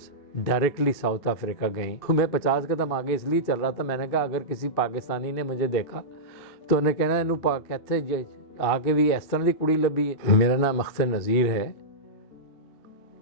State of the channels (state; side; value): late; right; 2.7 ms